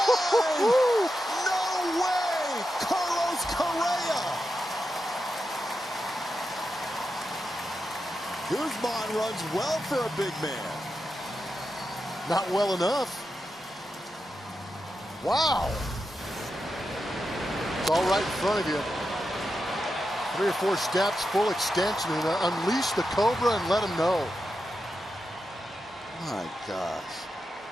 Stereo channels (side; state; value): both; normal; correlation 0.88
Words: No way. Carlos Correa. Guzman runs well for a big man. Not well enough. Wow. It's all right in front of you. 3 or 4 steps, full extension, and unleash the Cobra and let him know. My gosh.